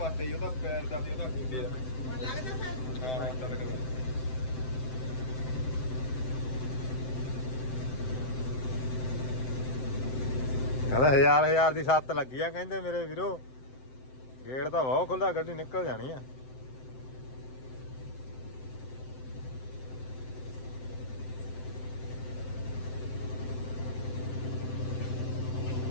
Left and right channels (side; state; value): right; late; 7.8 ms